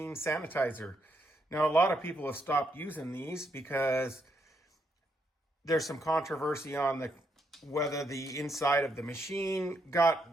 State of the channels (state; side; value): normal; both; correlation 0.77